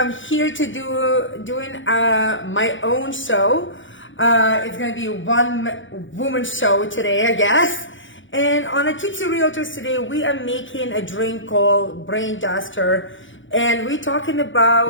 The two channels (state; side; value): late; right; 0.56 ms